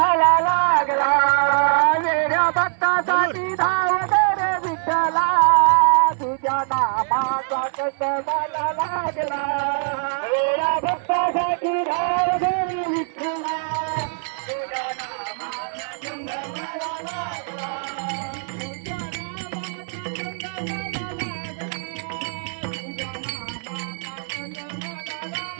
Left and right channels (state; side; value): silent; left; digital silence